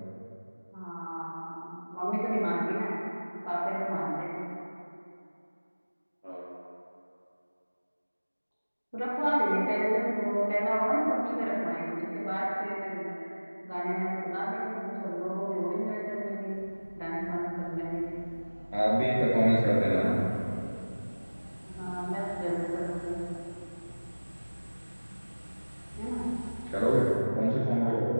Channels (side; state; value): both; inverted; correlation -1.00